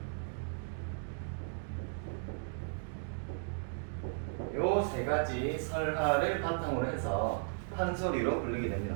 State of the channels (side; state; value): left; silent; digital silence